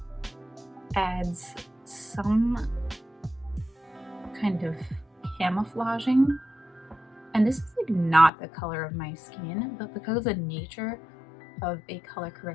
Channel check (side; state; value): right; drops out; at 8.3 s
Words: adds some kind of camouflaging. And this is like not the color of my skin, but because of the nature of a color